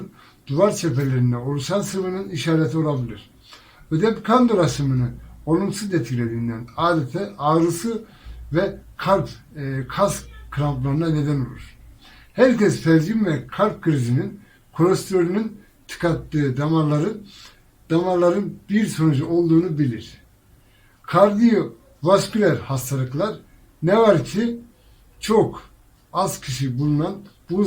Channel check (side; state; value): both; identical; correlation 1.00